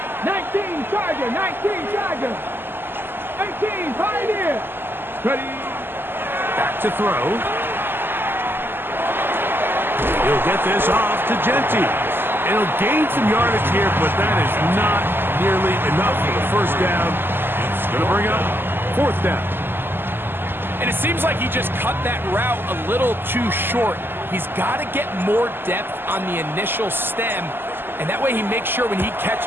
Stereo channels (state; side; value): late; left; 0.099 ms